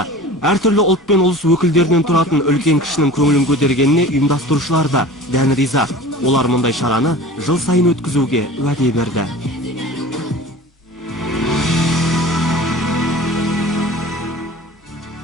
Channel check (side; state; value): both; normal; correlation 0.40